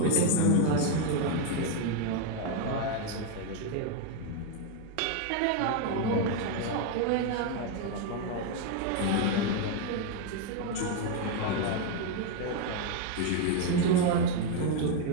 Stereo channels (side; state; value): both; different; correlation 0.01